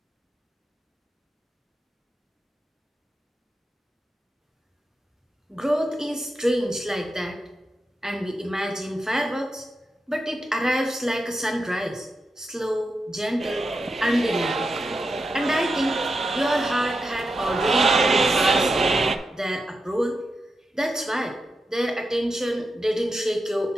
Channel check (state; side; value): normal; both; correlation 0.88